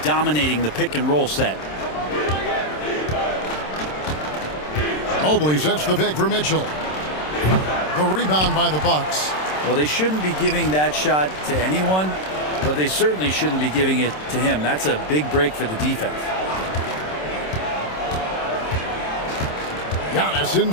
dominating the pick-and-roll set. Mobley sets the pick for Mitchell. The rebound by the Bucks. Well, they shouldn't be giving that shot to anyone, but they certainly shouldn't be giving it to him. That's a big break for the defense. Giannis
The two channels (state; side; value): late; right; 27 ms